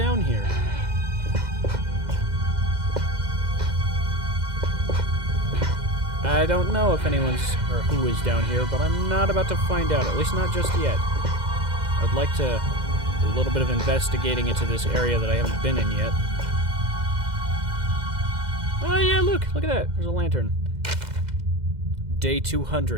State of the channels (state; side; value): late; left; 2.0 ms